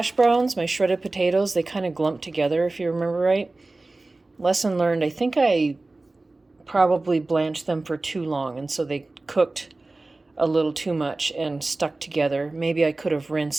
browns, my shredded potatoes, they kind of glumped together, if you remember right. Lesson learned, I think I probably blanched them for too long, and so they cooked a little too much and stuck together. Maybe I could have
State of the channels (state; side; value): quieter; left; 3.1 dB